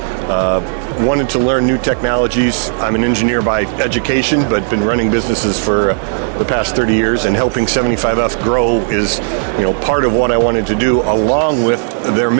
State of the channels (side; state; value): left; silent; digital silence